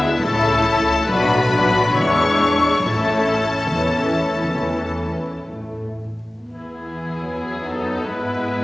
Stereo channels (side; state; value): both; normal; correlation 0.97